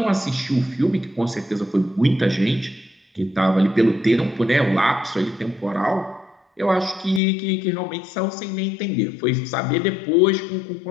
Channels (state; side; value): drops out; right; at 7.2 s